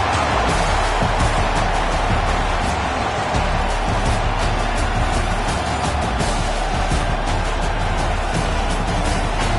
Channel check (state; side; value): identical; both; correlation 1.00